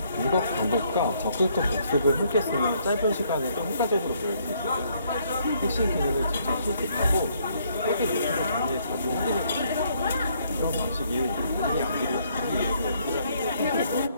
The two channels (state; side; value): inverted; both; correlation -0.68